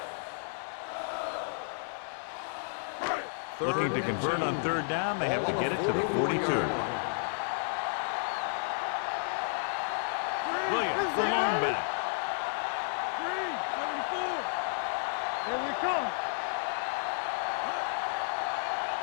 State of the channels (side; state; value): right; silent; digital silence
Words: Looking to convert on third down, they have to get it to the 42. Williams, the lone back. Green, from the start. Here we come. Big play, baby.